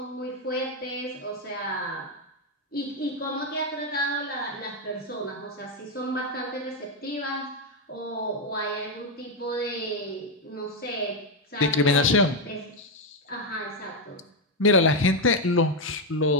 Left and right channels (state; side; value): normal; both; correlation 0.04